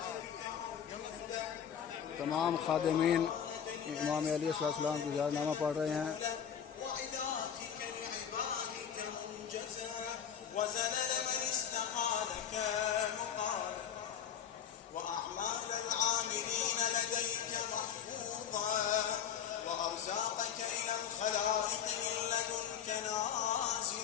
तमाम खादिमीन इमाम अली अलैहिस्सलाम की ज़ियारतनामा पढ़ रहे हैं। وأرزاقك إلى الخلائق من لدنك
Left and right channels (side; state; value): right; quieter; 8.6 dB